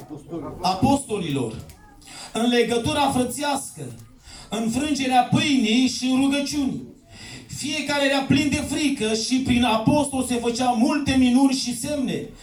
apostolilor, în legătura frățească, în frângerea pâinii și în rugăciuni. Fiecare era plin de frică și prin apostol se făceau multe minuni și semne.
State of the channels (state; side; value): identical; both; correlation 1.00